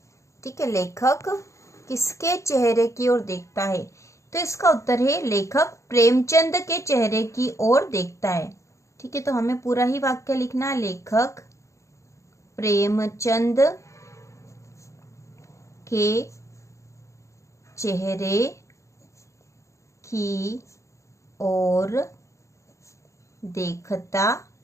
ठीक है, लेखक किसके चेहरे की ओर देखता है। तो इसका उत्तर है, लेखक प्रेमचंद के चेहरे की ओर देखता है। ठीक है, तो हमें पूरा ही वाक्य लिखना है, लेखक प्रेमचंद के चेहरे की ओर देखता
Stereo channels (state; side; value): late; right; 0.15 ms